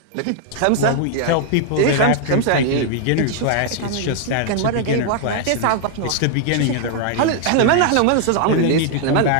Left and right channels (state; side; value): different; both; correlation 0.00